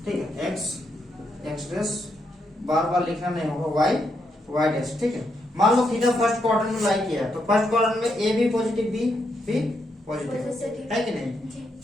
ठीक है, एक्स डैश बार बार लिखना नहीं होगा, वाई डैश। ठीक है, मान लो थीटा फर्स्ट क्वाड्रेंट में लाई किया है तो फर्स्ट क्वाड्रेंट में ए भी पॉजिटिव, बी पॉजिटिव है कि नहीं।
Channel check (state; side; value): normal; both; correlation 0.79